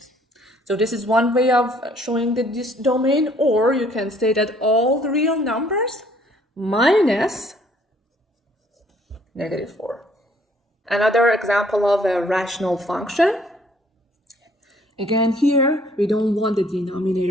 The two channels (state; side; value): normal; both; correlation 0.61